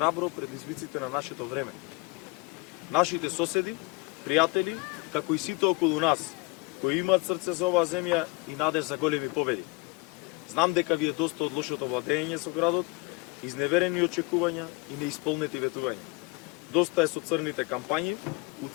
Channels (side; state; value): right; quieter; 26.5 dB